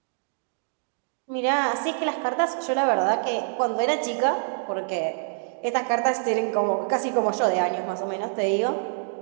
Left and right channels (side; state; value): left; silent; digital silence